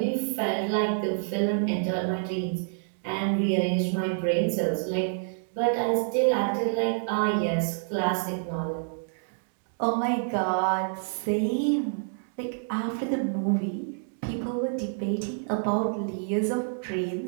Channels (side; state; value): left; silent; digital silence